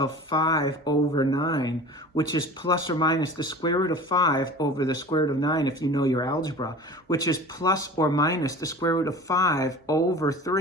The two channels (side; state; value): both; normal; correlation 0.39